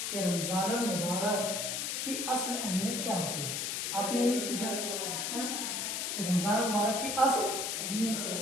کہ رمضان المبارک کی اصل اہمیت کیا ہوتی ہے۔ آپ نے یہ پوچھا ہے نا کہ رمضان المبارک کی اصل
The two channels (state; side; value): noise; left; hiss, 1 dB below the sound